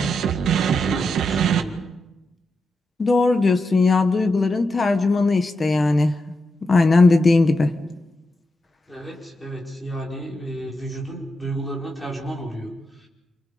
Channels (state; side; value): normal; both; correlation 0.86